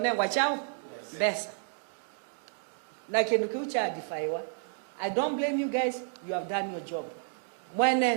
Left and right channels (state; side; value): silent; left; digital silence